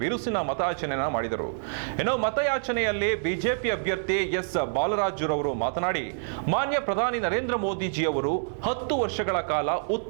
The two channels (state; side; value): silent; left; digital silence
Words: ಬಿರುಸಿನ ಮತಯಾಚನೆಯನ್ನು ಮಾಡಿದರು. ಇನ್ನು ಮತಯಾಚನೆಯಲ್ಲಿ ಬಿಜೆಪಿ ಅಭ್ಯರ್ಥಿ ಎಸ್ ಬಾಲರಾಜುರವರು ಮಾತನಾಡಿ, ಮಾನ್ಯ ಪ್ರಧಾನಿ ನರೇಂದ್ರ ಮೋದಿಜಿಯವರು 10 ವರ್ಷಗಳ ಕಾಲ